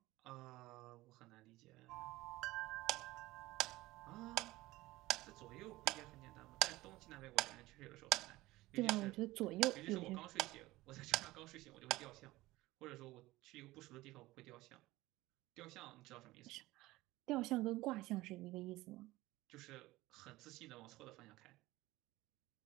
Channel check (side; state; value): left; quieter; 18.5 dB